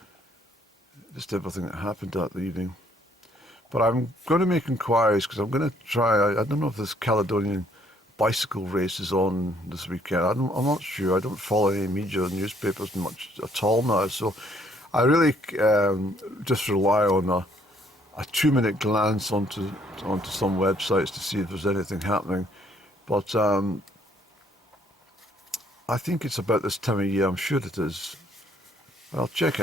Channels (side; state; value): both; normal; correlation 0.65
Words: just everything that happened that evening. But I'm going to make inquiries because I'm going to try. I don't know if this Caledonian bicycle race is on this weekend. I'm not sure. I don't follow any media or newspapers much at all now. So I really just rely on a 2-minute glance onto some websites to see if there's anything happening. But I think it's about this time of year. I'm sure it is. I'll check